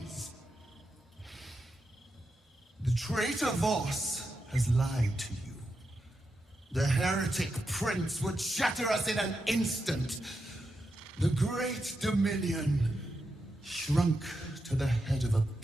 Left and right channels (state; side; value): normal; both; correlation 0.87